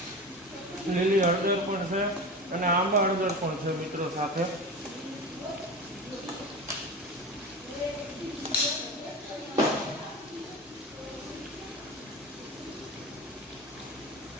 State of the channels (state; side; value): normal; both; correlation 0.28